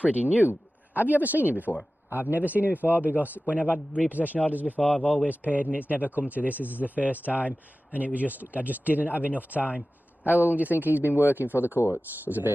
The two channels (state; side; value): normal; both; correlation 0.96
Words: new. Have you ever seen him before? I've never seen him before, because when I've had repossession orders before, I've always paid and it's never come to this. This is the first time, and I just didn't have enough time. How long do you think he's been working for the courts as a